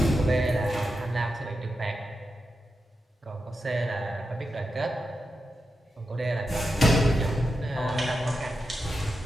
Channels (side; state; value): both; normal; correlation 0.88